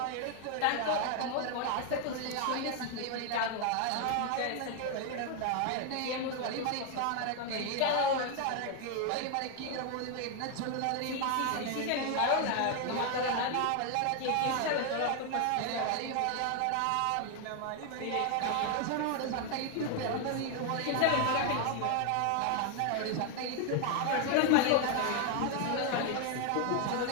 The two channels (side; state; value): both; different; correlation 0.00